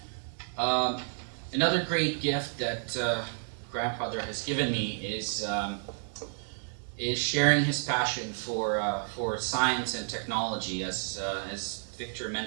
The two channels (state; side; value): silent; left; digital silence